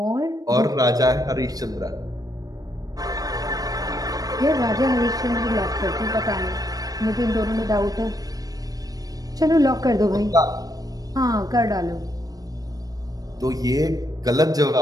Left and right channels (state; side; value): late; left; 0.18 ms